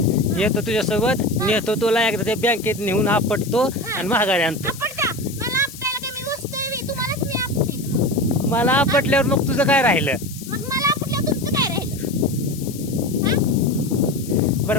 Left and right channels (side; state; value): left; noise; hiss, 15 dB below the sound